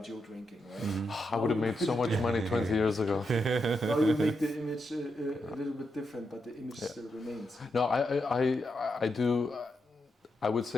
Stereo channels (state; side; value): normal; both; correlation 0.84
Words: drinking, right? I would have made so much money 20 years ago. Now you make the image a little bit different, but the image still remains. No, I do. I would